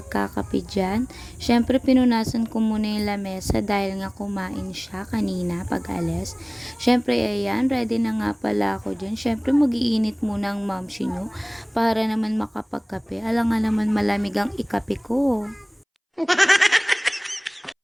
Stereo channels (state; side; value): identical; both; correlation 1.00